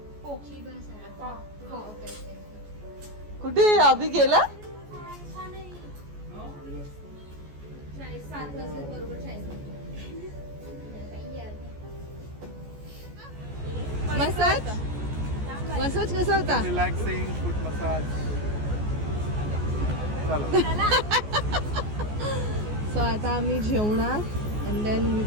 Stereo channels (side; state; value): left; late; 14 ms